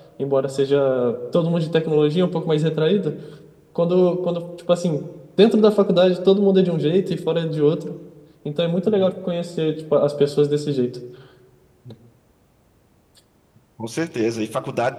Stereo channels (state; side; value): identical; both; correlation 1.00